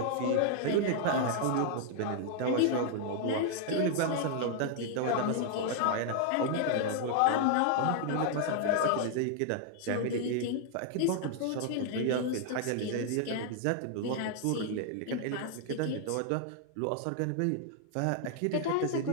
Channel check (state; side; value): different; both; correlation 0.00